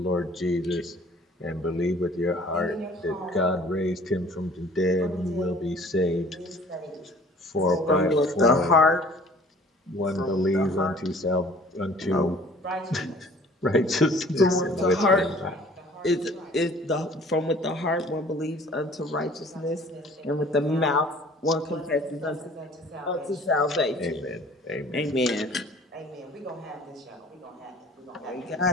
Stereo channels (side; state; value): both; normal; correlation 0.51